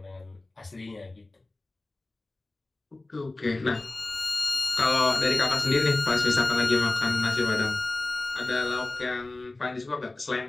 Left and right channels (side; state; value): right; quieter; 3.0 dB